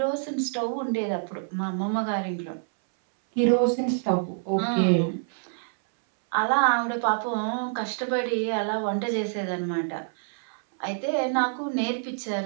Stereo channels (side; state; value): left; silent; 60 dB below the other